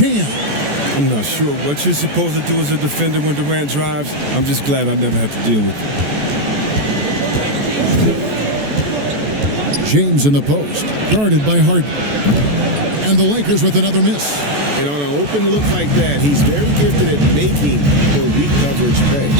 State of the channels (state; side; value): late; left; 14 ms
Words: I'm not sure what you're supposed to do as a defender when Durant drives. I'm just glad I never have to deal with it. James in the post, guarded by Harden. And the Lakers with another miss. And on an open look like that, he's very gifted at making the weak coverage pay.